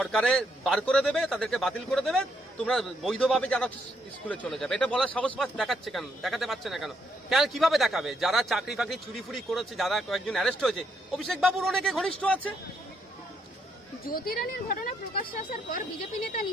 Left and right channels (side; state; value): both; normal; correlation 0.75